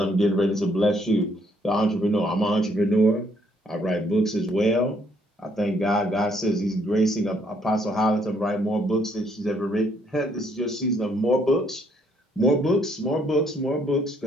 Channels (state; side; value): normal; both; correlation 0.68